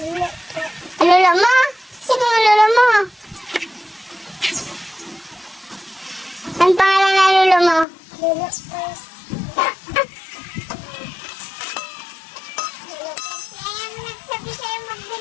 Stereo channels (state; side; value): drops out; right; at 7.9 s